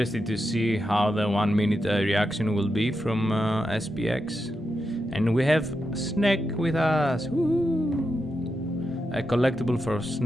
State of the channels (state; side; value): normal; both; correlation 0.87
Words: to see how the 1 minute reaction will be from SPX. And we have Snack with us. Woo! A collectible for